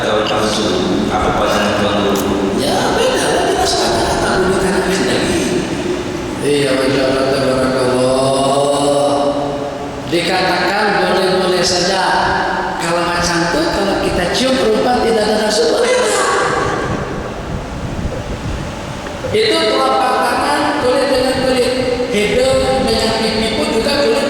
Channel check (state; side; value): identical; both; correlation 1.00